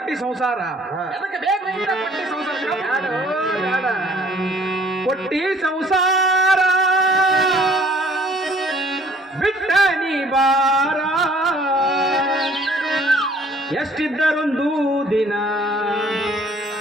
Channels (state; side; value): normal; both; correlation 0.57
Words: ಸಂಸಾರ ಎದಕ್ಕೆ ಬೇಕು ಇಂತ ಕೊಟ್ಟಿ ಸಂಸಾರ ಕೊಟ್ಟಿ ಸಂಸಾರ ಬಿಟ್ಟ ನೀ ಬಾರ ಎಷ್ಟಿದ್ದರೊಂದು ದಿನ